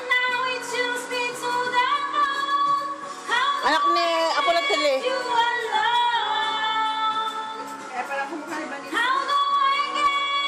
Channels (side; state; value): both; identical; correlation 1.00